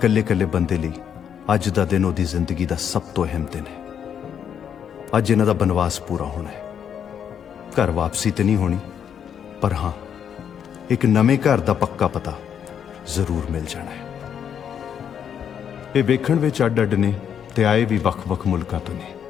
कल्ले बंदे लई अज दा दिन ओदी जिंदगी दा सब तो अहम दिन है। अज इन्हां दा बनवास पूरा होना है। घर वापसी तो नहीं होनी, पर हाँ एक नवे घर दा पक्का पता जरूर मिल जाना है। ये वेखण विच अड अड ने ते आए भी वख वख मुल्कां तो ने,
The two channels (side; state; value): right; quieter; 8.4 dB